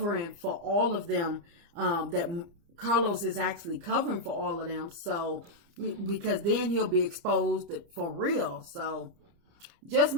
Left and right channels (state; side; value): late; left; 30 ms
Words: for all of them, that Carlos is actually covering for all of them. So, because then he'll be exposed for real. So, just